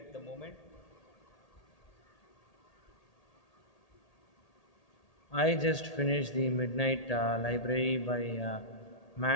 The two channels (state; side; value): late; right; 1.8 ms